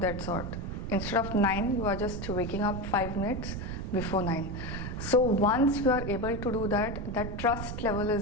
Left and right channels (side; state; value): right; noise; rumble, 6 dB below the sound